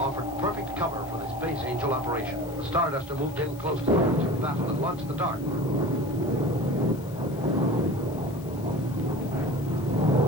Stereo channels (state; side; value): noise; left; hiss, 22 dB below the sound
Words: perfect cover for the Space Angel operation. The Starduster moved in close to the launching battle and launched the Dart.